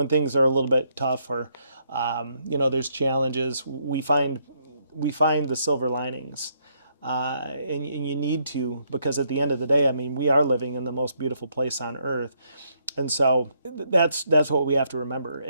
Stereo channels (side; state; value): both; inverted; correlation -0.73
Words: things are a little bit tough or, there's challenges, we find the silver linings. And you need to, because at the end of the day, we are living in the most beautiful place on earth. And so that's what we have to remember.